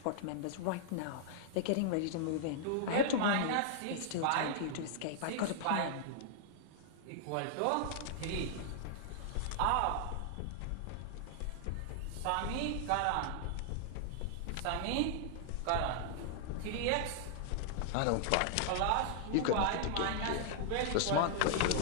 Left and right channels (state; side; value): different; both; correlation -0.01